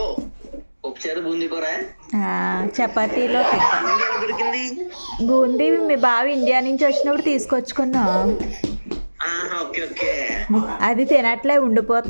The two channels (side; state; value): both; inverted; correlation -1.00